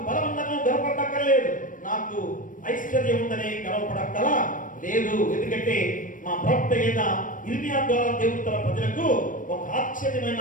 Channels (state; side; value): late; right; 0.38 ms